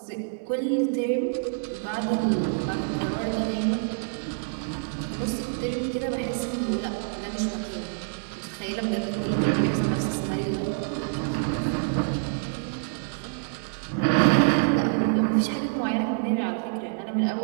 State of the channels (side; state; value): left; silent; 60 dB below the other